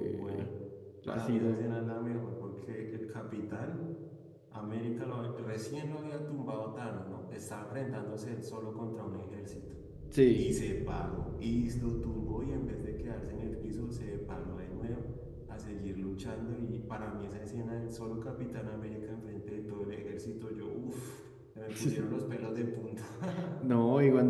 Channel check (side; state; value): both; identical; correlation 1.00